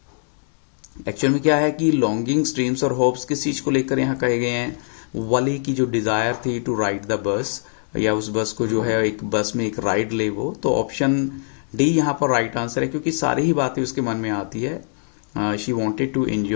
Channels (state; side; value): silent; right; digital silence